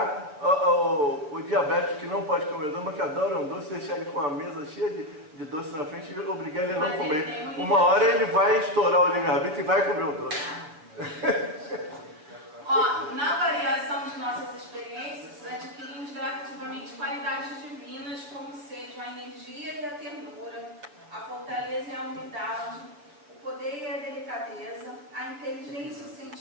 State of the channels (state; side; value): late; left; 6.8 ms